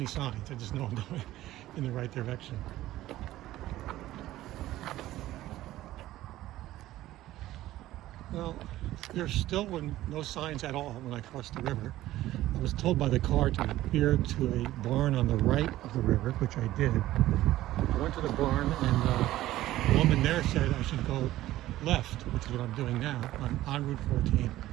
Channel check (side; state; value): left; quieter; 15.1 dB